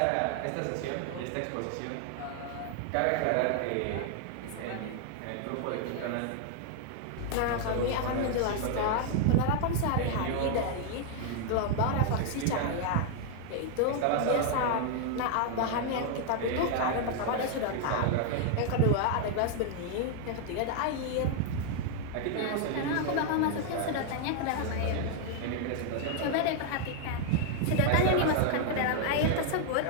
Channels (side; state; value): both; different; correlation 0.00